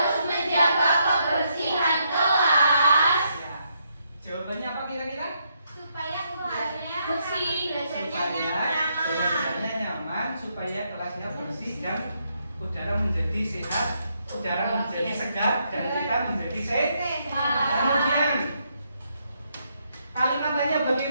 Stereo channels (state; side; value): inverted; both; correlation -0.76